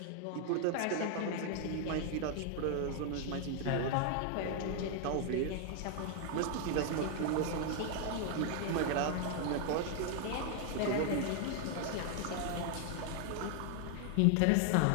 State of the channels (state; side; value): different; both; correlation 0.00